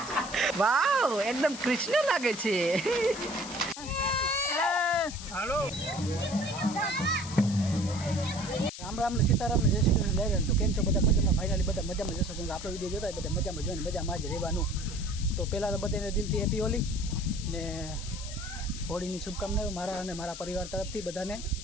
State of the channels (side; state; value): left; noise; hiss, 11 dB below the sound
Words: વાવ એકદમ કૃષ્ણ લાગે છે हेलो राम राम ने सीताराम ने जय श्री कृष्ण लहरे तो केम छो बधा मजामां फाइनली बधा मजामां जशो केम आपणो विडियो जोता बधा मजामां जोईने मजामां ज रहेवानुं तो पहला तो बधाने दिलथी हेपी होली ने होळीनी शुभकामनाओं मारा अने मारा परिवार तरफथी बधाने